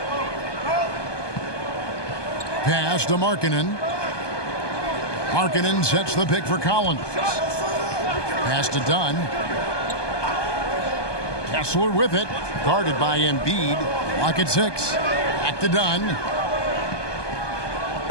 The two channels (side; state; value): right; late; 1.2 ms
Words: Pass to Markkanen. Markkanen sets the pick for Collins. Pass to Dunn. Kessler with it. Guarded by Embiid. Lock at 6. Back to Dunn.